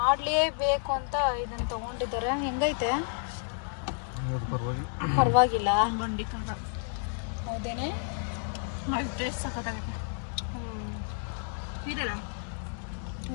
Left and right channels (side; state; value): right; silent; 57 dB below the other